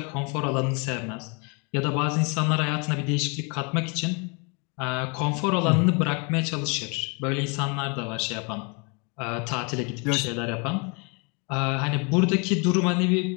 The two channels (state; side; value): quieter; right; 33.2 dB